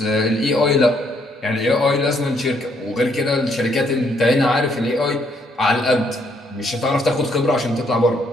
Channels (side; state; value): both; normal; correlation 0.70